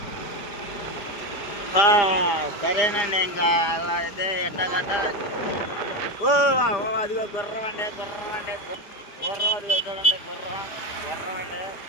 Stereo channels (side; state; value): right; late; 4.9 ms